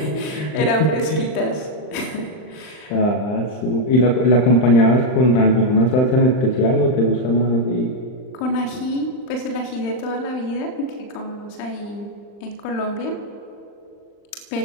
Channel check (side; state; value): right; late; 39 ms